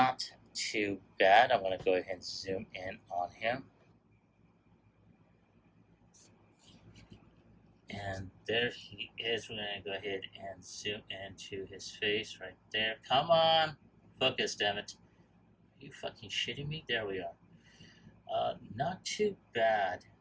too bad. I'm going to go ahead and zoom in on him. And there he is. We're going to go ahead and zoom into his face right there. Come on. Focus, damn it. Are you fucking shitting me? There we are. Not too bad.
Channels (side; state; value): both; identical; correlation 1.00